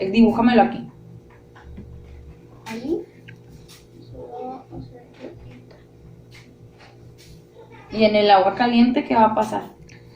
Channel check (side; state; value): both; identical; correlation 1.00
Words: aquí. Ahí. Y en el agua caliente, ¿qué va a pasar?